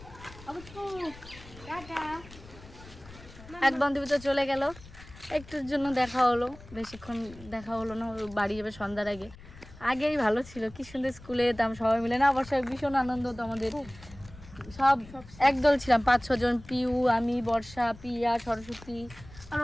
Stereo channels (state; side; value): noise; left; rumble, 19 dB below the sound